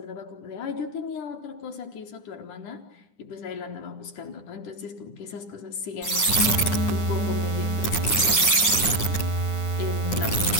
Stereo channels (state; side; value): late; right; 9.9 ms